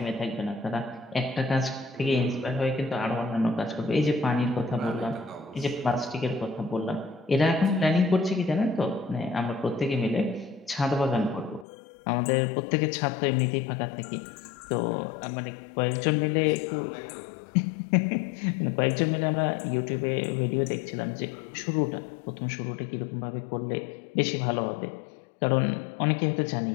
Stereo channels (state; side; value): drops out; right; at 11.7 s